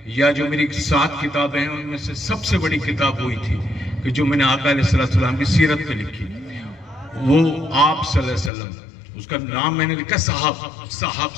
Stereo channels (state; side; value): drops out; right; at 8.5 s